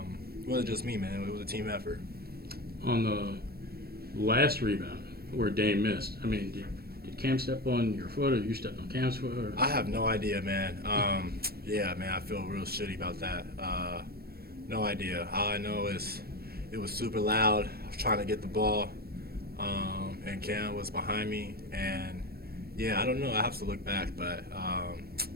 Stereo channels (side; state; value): left; late; 0.45 ms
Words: wasn't just me, man. It was a team effort. On the last rebound where Dame missed, I mean, did Cam step on your foot or you stepped on Cam's foot? Or? I have no idea, man. Yeah, man, I feel real shitty about that. No idea. All I know is it was super loud. I was trying to get the ball, and Cam was behind me. And, yeah, I don't know. I have to look back. But,